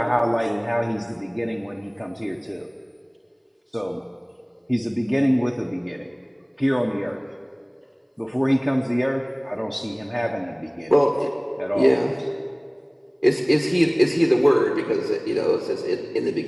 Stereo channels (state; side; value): identical; both; correlation 1.00